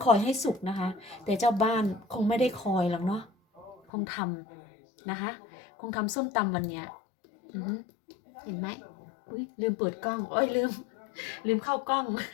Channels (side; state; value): right; drops out; at 3.8 s